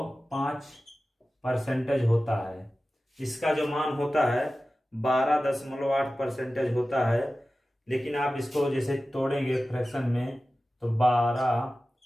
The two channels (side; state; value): both; normal; correlation 0.95